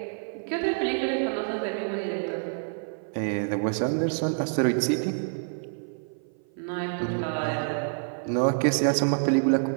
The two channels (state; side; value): silent; left; 56 dB below the other